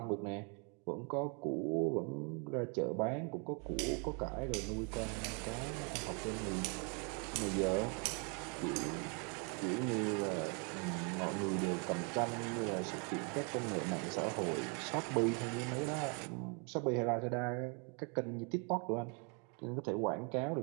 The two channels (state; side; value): quieter; left; 35.9 dB